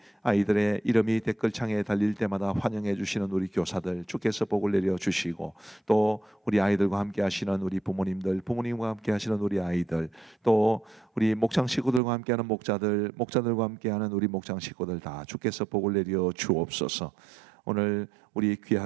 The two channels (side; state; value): left; drops out; at 12.0 s